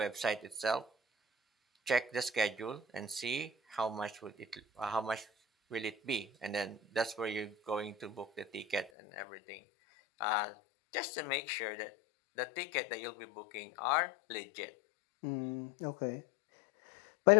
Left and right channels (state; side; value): drops out; right; at 8.9 s